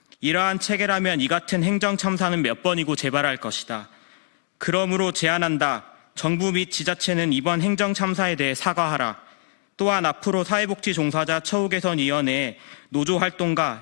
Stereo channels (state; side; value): silent; right; digital silence